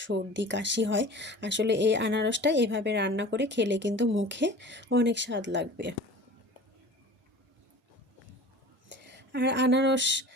সর্দি কাশি হয়। আসলে এই আনারসটা এভাবে রান্না করে খেলে কিন্তু মুখে অনেক স্বাদ লাগবে। আর আনারস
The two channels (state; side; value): normal; both; correlation 0.41